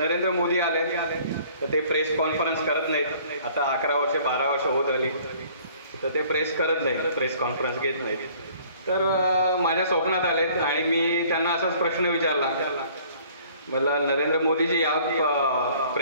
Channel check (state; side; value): inverted; both; correlation -0.55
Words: मोदी आले, तर ते प्रेस कॉन्फरन्स करत नाहीत. आता 11 वर्ष 12 वर्ष होत आली, तर ते प्रेस करत नाहीत, प्रेस कॉन्फरन्स घेत नाहीत. तर माझ्या स्वप्नात आले आणि मी त्यांना असाच प्रश्न विचारला, मला नरेंद्र मोदी जी आप